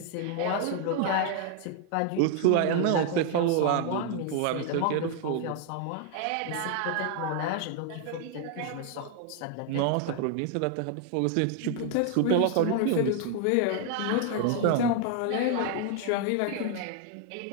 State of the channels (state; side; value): different; both; correlation 0.00